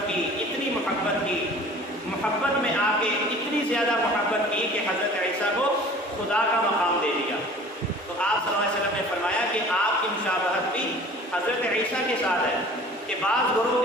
کی، محبت میں آ کے اتنی زیادہ محبت کی کہ حضرت عیسیٰ کو خدا کا مقام دے دیا۔ تو آپ صلی اللہ علیہ وسلم نے فرمایا کہ آپ کی مشابہت بھی حضرت عیسیٰ کے ساتھ ہے، کہ بعض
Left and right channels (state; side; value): normal; both; correlation 0.46